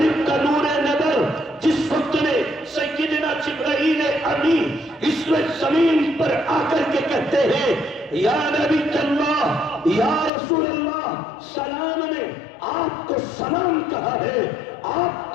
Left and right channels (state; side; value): drops out; right; at 10.3 s